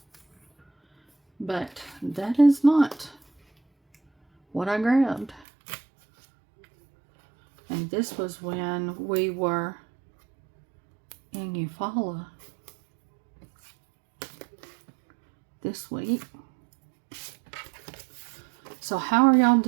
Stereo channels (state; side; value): drops out; left; at 5.5 s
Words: But that is not what I grabbed. And this was when we were in Eufaula this week. So how are y'all